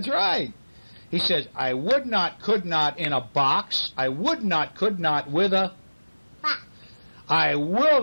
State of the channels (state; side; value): inverted; both; correlation -1.00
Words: right. He says, I would not, could not in a box. I would not, could not with a fox. I will